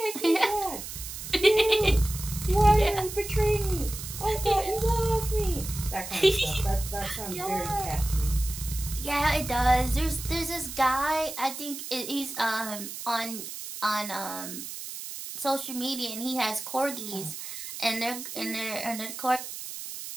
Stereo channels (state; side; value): noise; right; hiss, 9 dB below the sound